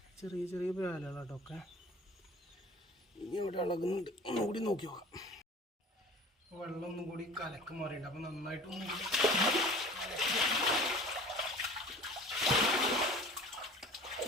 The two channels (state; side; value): normal; both; correlation 0.43